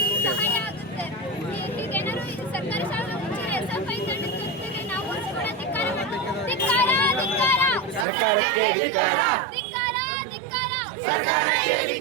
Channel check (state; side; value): drops out; left; at 8.1 s